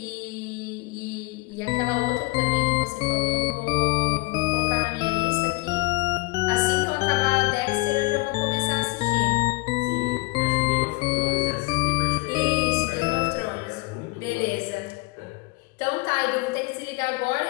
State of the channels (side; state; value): right; quieter; 23.3 dB